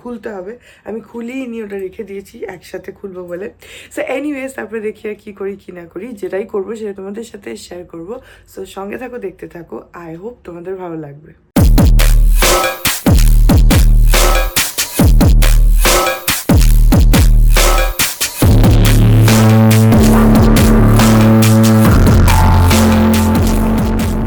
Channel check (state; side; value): identical; both; correlation 1.00